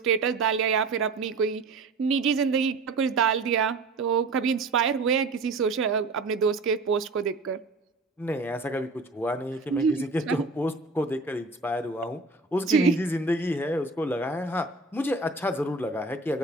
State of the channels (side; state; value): left; quieter; 3.7 dB